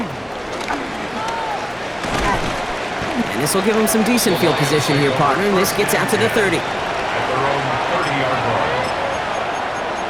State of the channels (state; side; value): identical; both; correlation 1.00